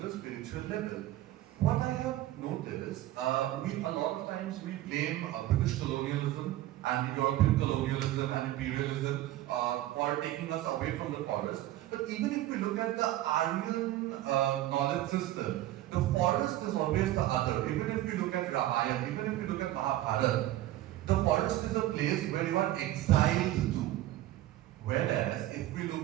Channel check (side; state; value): left; quieter; 14.9 dB